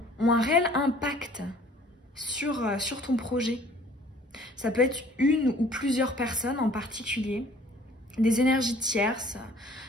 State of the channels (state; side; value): normal; both; correlation 0.53